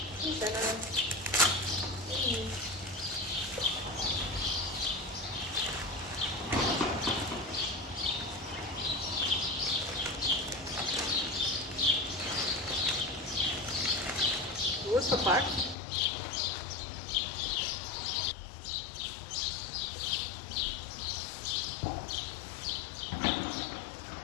Die zijn er. Goed verpakt.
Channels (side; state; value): right; drops out; at 15.8 s